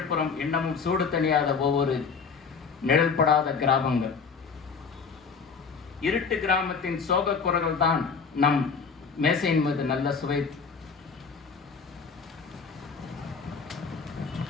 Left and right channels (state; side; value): quieter; right; 5.5 dB